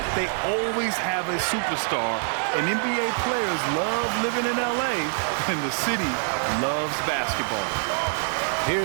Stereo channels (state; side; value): silent; left; 57 dB below the other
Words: they always have a superstar. And NBA players love living in LA, and the city loves basketball.